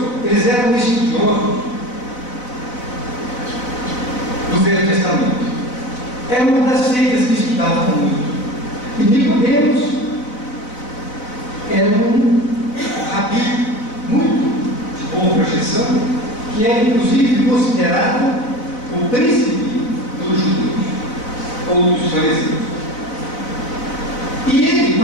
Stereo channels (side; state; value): right; late; 4.0 ms